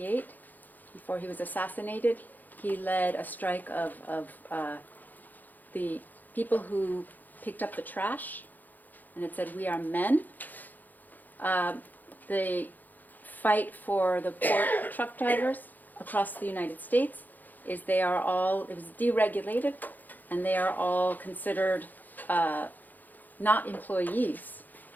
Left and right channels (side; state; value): right; late; 0.084 ms